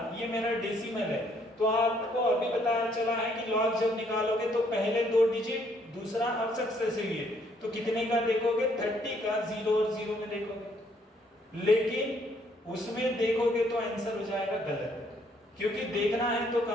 ये मेरा डेसिमल है, तो आपको अभी पता चला है कि लॉग जब निकालोगे तो पहले 2 डिजिट, दूसरा अब सक्सेसिव है, तो कितने का देखोगे, 30 का 0 और 0 में देखोगे, लेकिन उसमें देखोगे तो आंसर हो जाएगा गलत, क्योंकि देखना है तो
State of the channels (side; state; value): both; normal; correlation 0.67